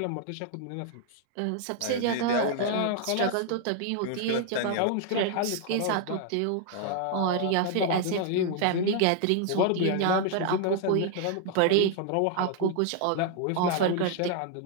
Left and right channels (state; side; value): different; both; correlation 0.00